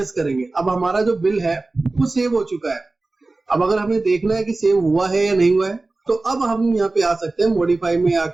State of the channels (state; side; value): quieter; left; 3.3 dB